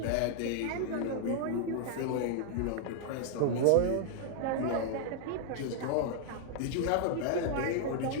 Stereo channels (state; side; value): different; both; correlation 0.00